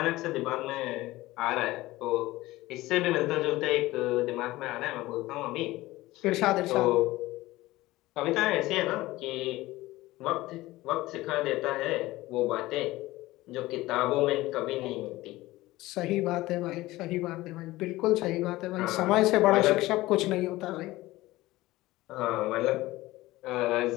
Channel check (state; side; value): quieter; right; 18.3 dB